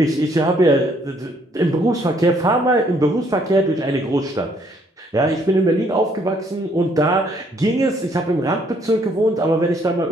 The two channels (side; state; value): both; normal; correlation 0.67